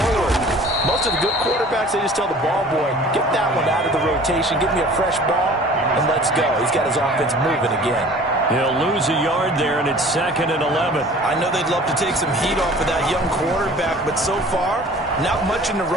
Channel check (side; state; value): both; normal; correlation 0.47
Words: Most of the good quarterbacks, they just tell the ball boy, get that one out of the rotation, give me a fresh ball, and let's go. He's got his offense moving again. He'll lose a yard there, and it's 2nd and 11. I know they'd love to take some heat off of that young quarterback, but so far, not much in the